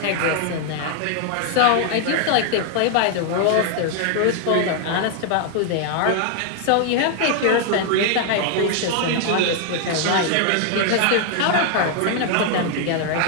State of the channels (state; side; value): different; both; correlation 0.00